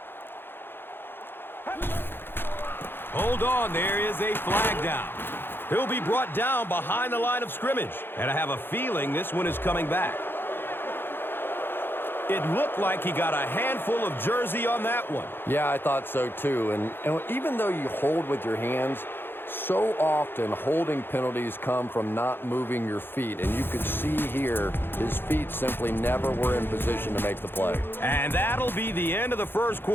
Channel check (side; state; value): right; late; 0.10 ms